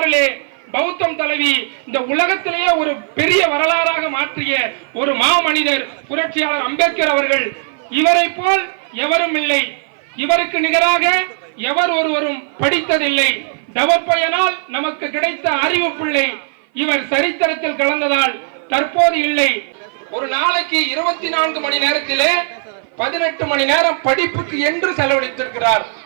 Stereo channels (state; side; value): silent; left; 57 dB below the other